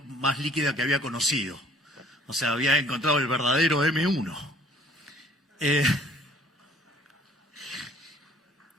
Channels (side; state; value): both; normal; correlation 0.54